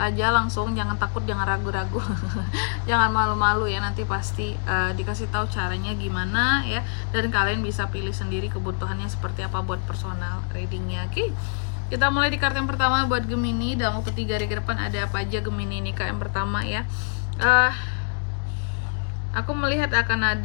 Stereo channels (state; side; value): silent; right; digital silence